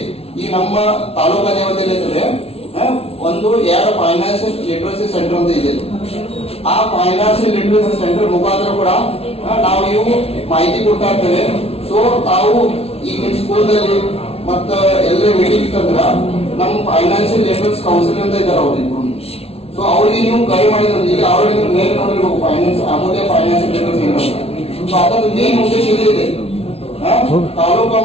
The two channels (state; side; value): late; right; 0.29 ms